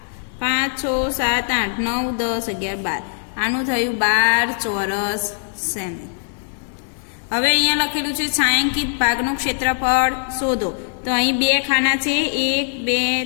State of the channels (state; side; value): silent; right; digital silence